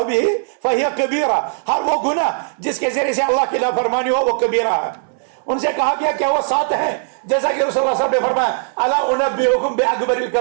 بھی فہی کبیرہ، ہر وہ گناہ جس کے ذریعے سے اللہ کی نافرمانی ہو وہ کبیرہ ہے۔ ان سے کہا گیا کیا وہ 7 ہیں؟ جیسا کہ رسول اللہ صلی اللہ علیہ وسلم نے فرمایا الا انبئکم باکبر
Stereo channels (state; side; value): silent; left; digital silence